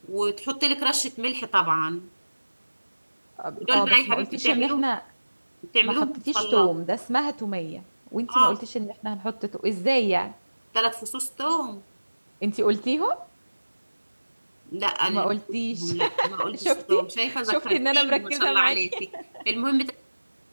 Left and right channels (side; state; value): both; inverted; correlation -1.00